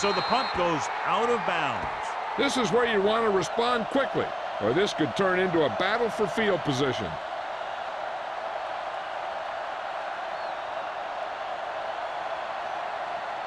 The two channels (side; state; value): both; identical; correlation 1.00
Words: the punt goes out of bounds. This is where you want to respond quickly, or this could turn into a battle for field position.